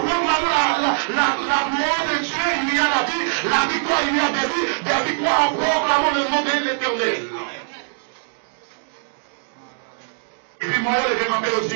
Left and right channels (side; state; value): left; silent; digital silence